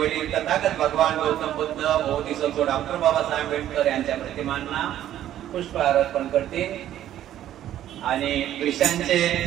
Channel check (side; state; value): left; quieter; 12.0 dB